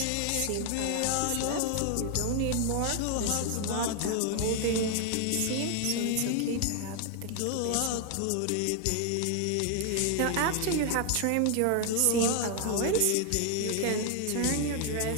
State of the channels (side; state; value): both; different; correlation 0.00